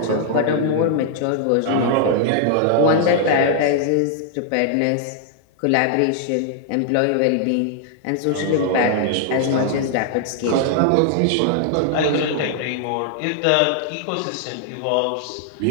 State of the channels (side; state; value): both; different; correlation 0.00